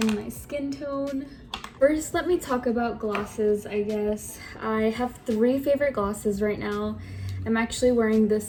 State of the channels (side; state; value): both; identical; correlation 1.00